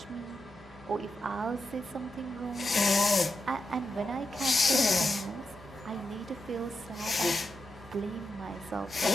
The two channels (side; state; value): both; normal; correlation 0.87